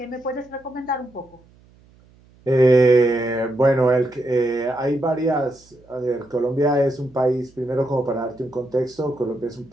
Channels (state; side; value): noise; right; hum, 29 dB below the sound